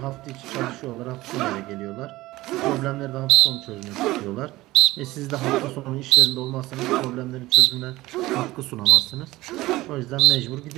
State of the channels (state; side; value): quieter; left; 18.3 dB